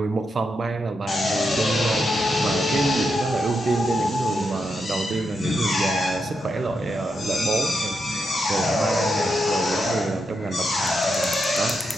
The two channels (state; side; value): normal; both; correlation 0.84